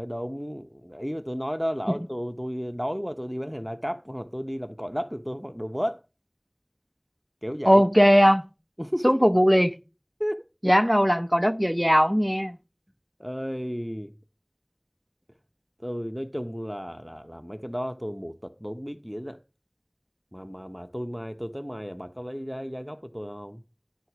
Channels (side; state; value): both; identical; correlation 1.00